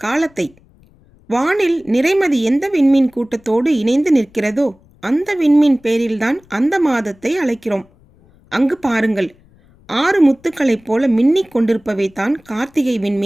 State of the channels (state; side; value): noise; left; rumble, 30 dB below the sound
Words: காலத்தை. வானில் நிறைமதி எந்த விண்மீன் கூட்டத்தோடு இணைந்து நிற்கிறதோ அந்த விண்மீன் பேரில்தான் அந்த மாதத்தை அழைக்கிறோம். அங்கு பாருங்கள், 6 முத்துக்களைப் போல மின்னிக் கொண்டிருப்பவை தான் கார்த்திகை